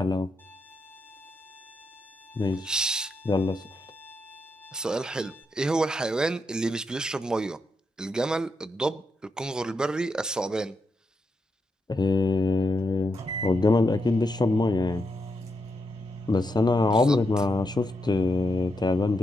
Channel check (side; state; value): both; normal; correlation 0.83